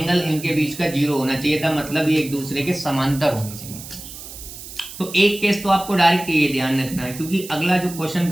इनके बीच का 0 होना चाहिए था, मतलब ये एक दूसरे के समांतर होने चाहिए। तो एक केस तो आपको डायरेक्ट ये ध्यान रखना है, क्योंकि अगला जो क्वेश्चन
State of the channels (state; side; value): noise; right; hiss, 13 dB below the sound